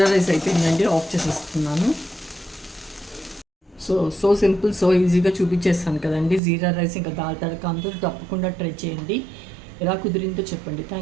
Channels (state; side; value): drops out; left; at 6.4 s